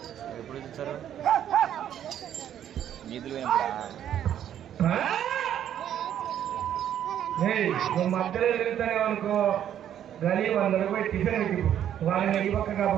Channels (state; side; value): quieter; left; 10.3 dB